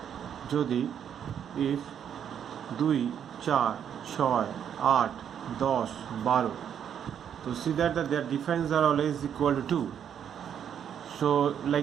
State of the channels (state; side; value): quieter; left; 8.8 dB